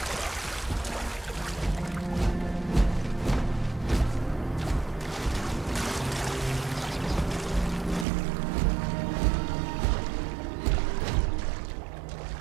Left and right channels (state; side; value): drops out; left; at 8.1 s